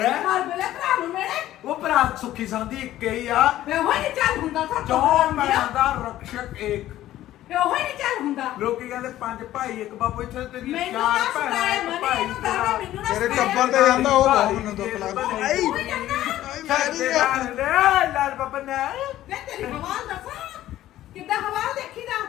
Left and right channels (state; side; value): quieter; right; 13.9 dB